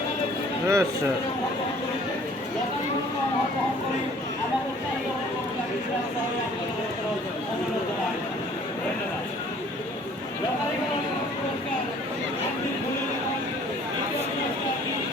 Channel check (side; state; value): both; normal; correlation 0.54